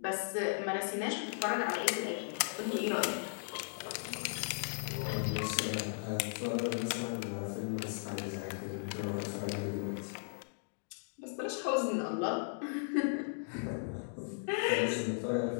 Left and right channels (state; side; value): silent; right; digital silence